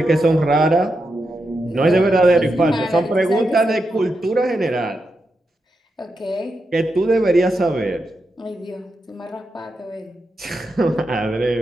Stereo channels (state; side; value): normal; both; correlation 0.86